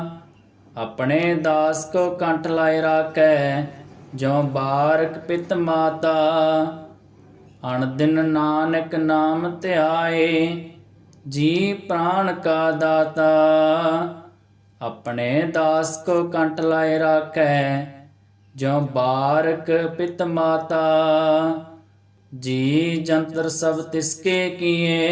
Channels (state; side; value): identical; both; correlation 1.00